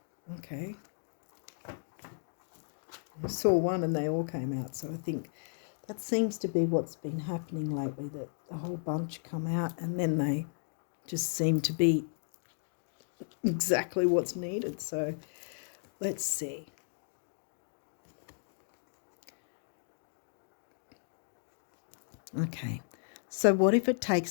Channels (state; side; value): silent; right; digital silence